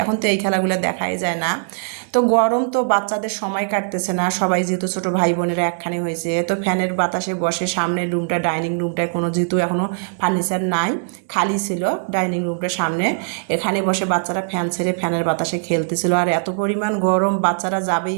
এখন তো এই খেলাগুলো দেখাই যায় না। তো গরম তো বাচ্চাদের সময় কাটতেছে না, সবাই যেহেতু ছোটো ভাই বোনেরা একখানে হয়েছে, তো ফ্যানের বাতাসে বসে সামনের রুমটা ডাইনিং রুমটায় কোনো যেহেতু এখনও ফার্নিচার নাই, খালি ছিল ডাইনিং রুমটার সামনে, এখানে বসে বাচ্চারা ফ্যান ছেড়ে ফ্যানের বাতাসে খেলতেছিল। আর এত পরিমাণ গরম, বাচ্চারা যাবেই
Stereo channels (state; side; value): silent; left; digital silence